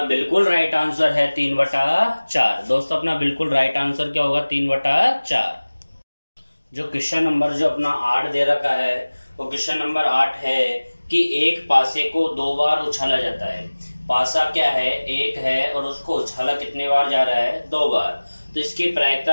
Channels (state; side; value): inverted; both; correlation -1.00